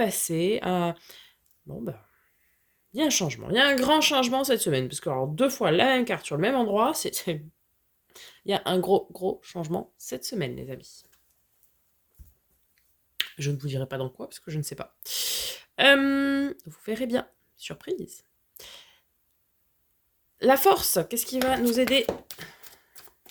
Bon, bah... Il y a un changement. Il y a un grand changement cette semaine. Parce que, alors, 2 fois la même carte sur le même endroit, il y a un gros changement cette semaine, les amis. Je ne vous dirai pas dans quoi, parce que je ne sais pas. Vous verrez bien. Surprise. La force, qu'est-ce qui va nous aider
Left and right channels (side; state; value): both; identical; correlation 1.00